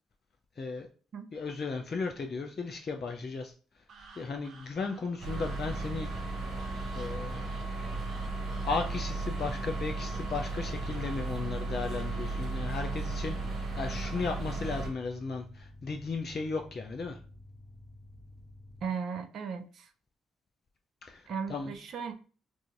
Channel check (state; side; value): normal; both; correlation 0.73